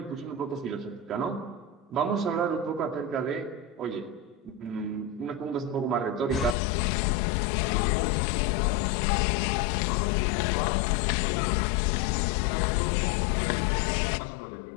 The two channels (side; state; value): right; drops out; at 6.6 s